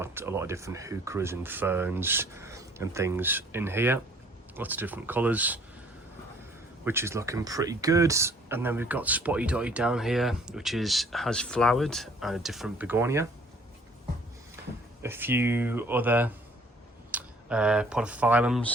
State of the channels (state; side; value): normal; both; correlation 0.57